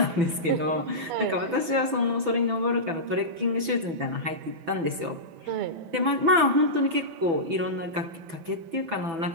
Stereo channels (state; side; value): late; left; 6.0 ms